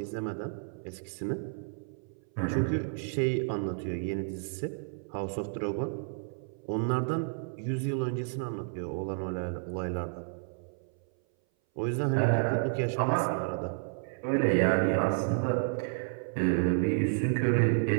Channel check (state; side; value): silent; left; 57 dB below the other